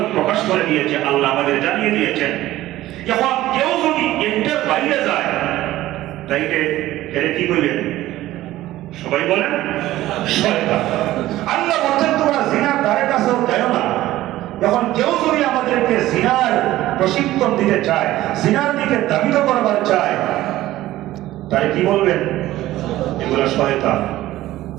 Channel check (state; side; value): quieter; left; 15.5 dB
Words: প্রকাশ করে দিয়েছে, আল্লাহ আমাদের জানিয়ে দিয়েছেন। এখন কেউ যদি এটার বাইরে যায়, তাইলে এর কি করবেন? সবাই বলেন শয়তান। আল্লাহ বলছেন তোমরা জিনার ধারে কাছেও যাও না। যখন কেউ যদি আমাদেরকে জিনার প্রশিক্ষণ দিতে চায়, জিনার দিকে ধাবিত করবার চায়, তাই কি বলবেন? এগুলো শয়তান।